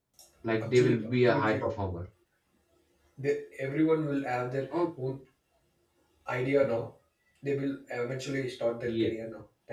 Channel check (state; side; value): identical; both; correlation 1.00